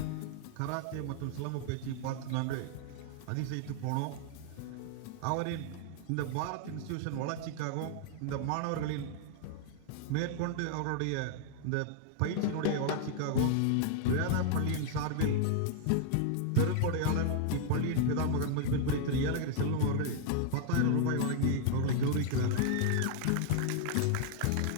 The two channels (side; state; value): both; different; correlation 0.00